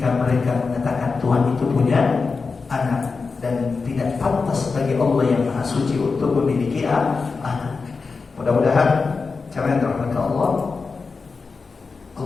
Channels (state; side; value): quieter; right; 4.6 dB